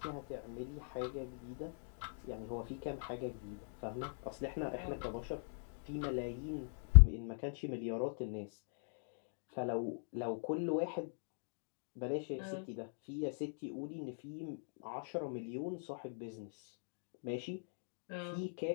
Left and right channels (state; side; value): silent; right; digital silence